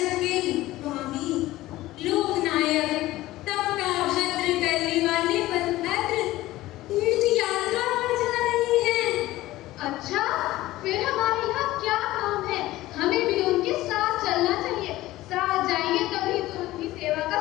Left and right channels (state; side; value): quieter; right; 16.8 dB